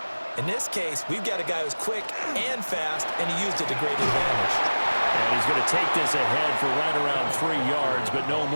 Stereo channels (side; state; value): both; inverted; correlation -1.00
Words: In this case, we've got a guy who's quick and fast, and he used it to great advantage. And he's going to take this ahead for right around 3 yards, but no